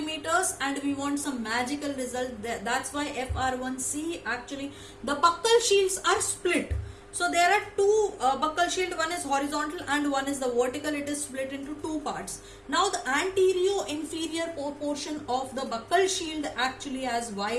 and we want some magical result. That's why FR1C, actually the buccal shields are split. So there are two buccal shield, one is horizontal and one is the vertical. It is split into two parts. Now the anterior inferior portion of the buccal shield actually has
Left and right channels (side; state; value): both; identical; correlation 1.00